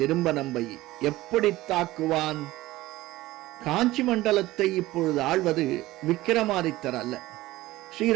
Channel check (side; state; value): left; quieter; 17.5 dB